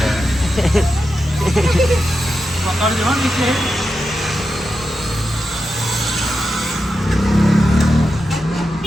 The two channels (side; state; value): both; normal; correlation 0.89